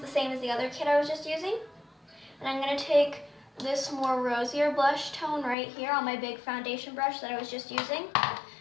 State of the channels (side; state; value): right; drops out; at 5.6 s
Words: same as the other kit I was just using. And I'm going to take this more rosier blush tone right here on my big foundation brush that I was just using.